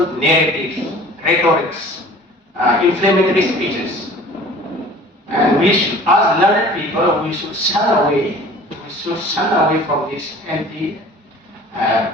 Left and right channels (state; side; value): normal; both; correlation 0.46